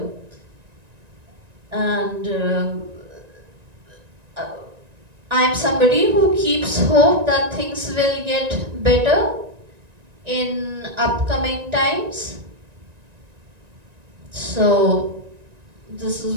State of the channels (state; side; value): late; left; 1.9 ms